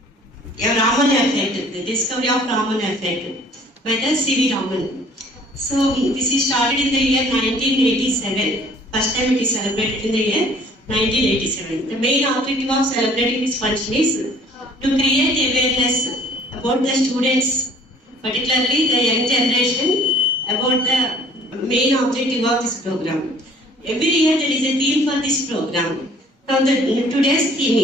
Raman effect, the discovery of Raman effect by the C.V. Raman. So this is started in the year 1987. First time it is celebrated in the year 1987. The main objective of celebrating this function is to create awareness about the students, particularly the young generation, about the main objective of this program. Every year there is a theme for this program. Now today's theme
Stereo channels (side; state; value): both; normal; correlation 0.55